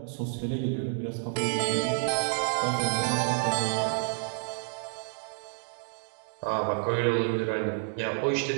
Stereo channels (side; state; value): left; silent; 58 dB below the other